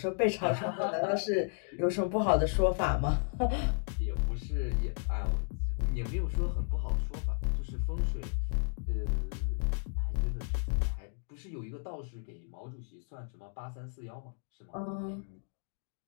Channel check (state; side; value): silent; right; 55 dB below the other